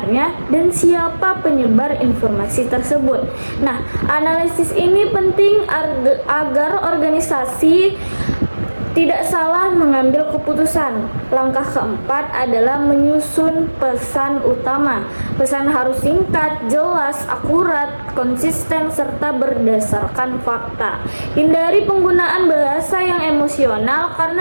dan siapa penyebar informasi tersebut. Nah, analisis ini penting agar organisasi tidak salah mengambil keputusan. Langkah keempat adalah menyusun pesan utama. Pesan harus singkat, jelas, akurat, konsisten, serta berdasarkan fakta. Hindari penggunaan bahasa yang emosional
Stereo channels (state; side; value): inverted; both; correlation -1.00